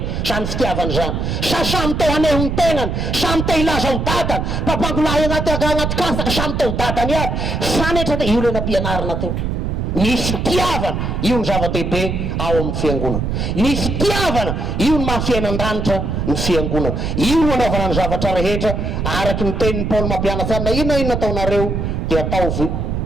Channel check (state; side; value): noise; right; rumble, 2 dB below the sound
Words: siya ftiafan siya siya siyamte hanehong tengan siyamte ilasaw tatan papagulayan at agangat kasa siyamte tatan yan sana ito yun na pianar natin ni ftiavan yun zavatipe awam fiangunan ni ftiavan yun mafianan ranta ny fiangunan yun anaovanan zavatra rehetra araky ny tenin'ny Paul mampianasan na ina taonareo dia ataovy